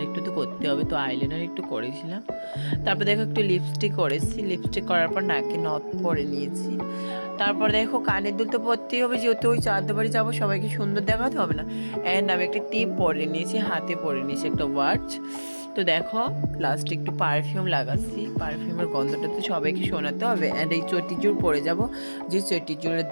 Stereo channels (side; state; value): both; inverted; correlation -1.00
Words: একটু তো করতে হবে, তো আইলাইনার একটু করেছিলাম। তারপর দেখো, একটু লিপস্টিক করেছি, লিপস্টিক করার পর নাকে নথ পরে নিয়েছি। তারপর দেখো, কানের দুল তো পরতেই হবে, যেহেতু ওই চাঁদ বাড়ি যাবো, সবাইকে সুন্দর দেখাতে হবে না। অ্যান্ড আমি একটা টিপ পরে নিয়েছি, হাতে পরে নিয়েছি একটা ওয়াচ। তো দেখো, লাস্টে একটু পারফিউম লাগাচ্ছি, পারফিউমের গন্ধটা তো সবাইকে শোনাতে হবে। অ্যান্ড এই চটিজুড় পরে যাব, যে চটিজুড়ের